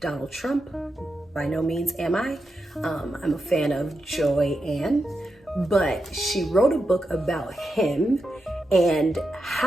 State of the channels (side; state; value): both; normal; correlation 0.87